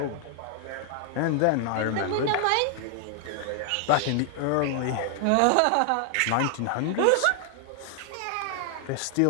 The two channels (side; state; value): both; different; correlation 0.00